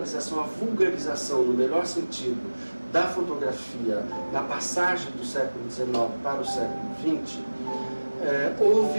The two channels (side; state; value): both; inverted; correlation -1.00